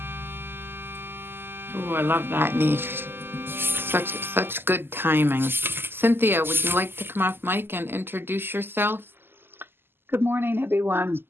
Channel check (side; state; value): left; late; 0.10 ms